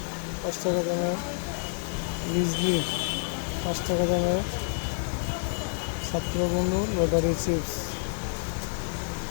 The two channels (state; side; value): silent; right; digital silence